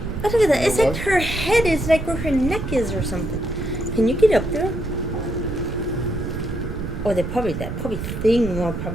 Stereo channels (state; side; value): noise; right; rumble, 6 dB below the sound